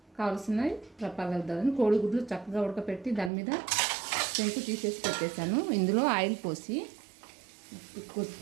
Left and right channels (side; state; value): left; drops out; at 3.3 s